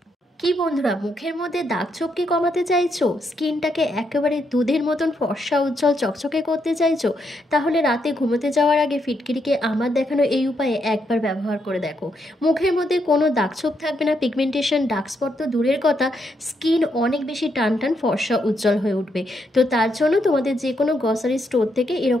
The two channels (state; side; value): normal; both; correlation 0.78